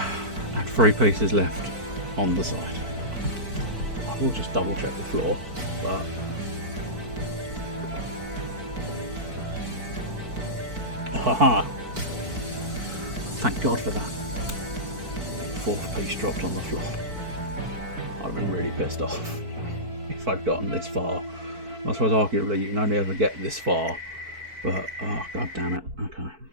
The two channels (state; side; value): late; left; 4.5 ms